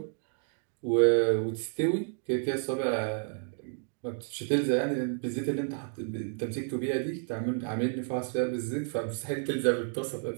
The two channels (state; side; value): silent; left; 57 dB below the other